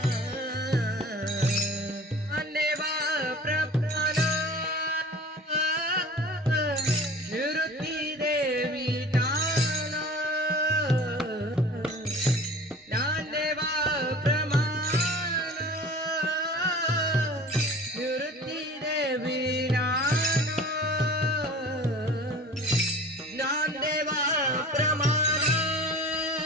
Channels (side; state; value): both; normal; correlation 0.42